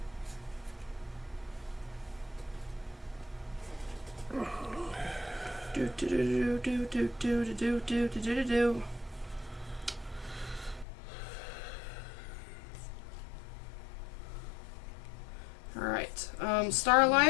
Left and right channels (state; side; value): drops out; right; at 10.9 s